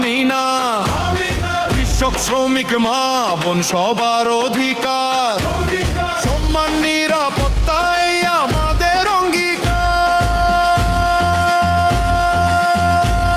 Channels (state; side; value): identical; both; correlation 1.00